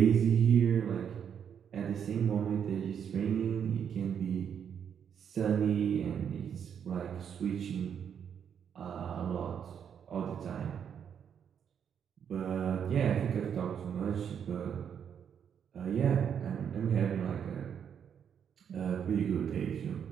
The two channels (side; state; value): left; quieter; 8.0 dB